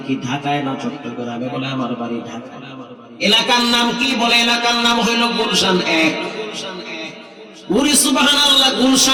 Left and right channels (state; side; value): identical; both; correlation 1.00